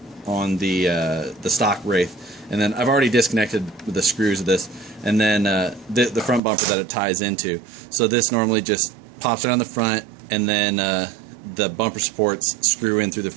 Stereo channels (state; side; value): drops out; left; at 6.4 s